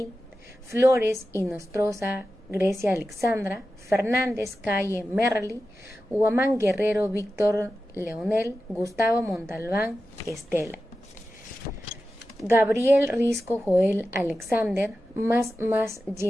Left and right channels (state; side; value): normal; both; correlation 0.93